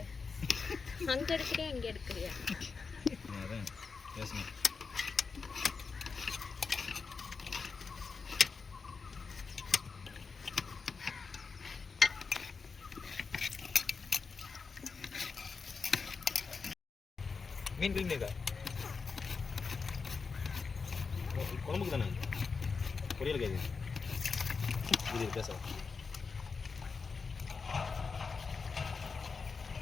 அங்க எடுக்கறியா இங்க எடுக்கறியா? அதான் பேசணும். மீன் கிளீன் இருக்கா? குழம்புக்கு தானே, பொரியல் கேது இது பேச.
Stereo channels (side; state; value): right; quieter; 5.0 dB